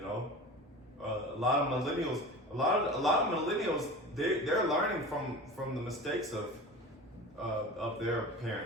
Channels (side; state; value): both; normal; correlation 0.33